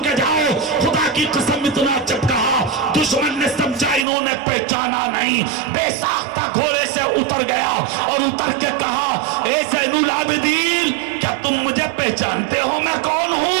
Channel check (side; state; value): left; drops out; at 4.0 s